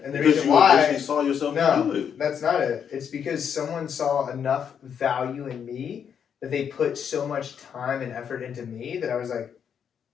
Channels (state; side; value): quieter; right; 7.8 dB